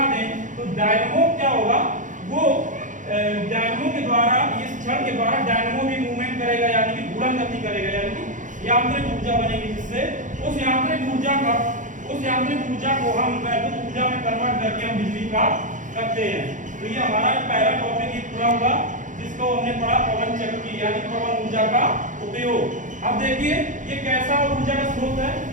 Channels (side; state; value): left; late; 0.37 ms